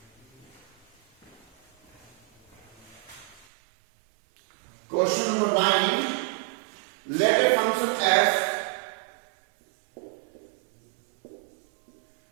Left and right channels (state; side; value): drops out; left; at 3.5 s